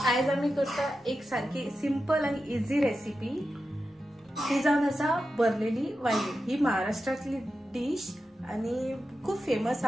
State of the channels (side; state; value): both; normal; correlation 0.91